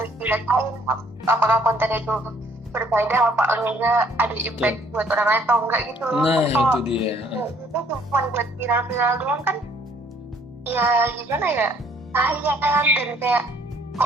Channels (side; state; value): both; normal; correlation 0.61